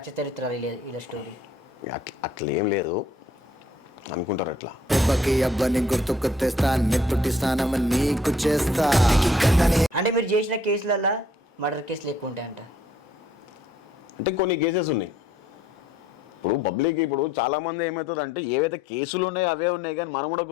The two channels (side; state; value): both; normal; correlation 0.62